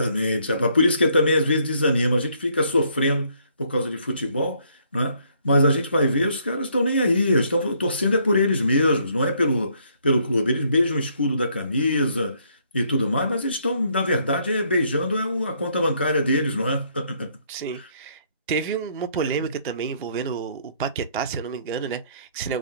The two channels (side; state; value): both; inverted; correlation -0.68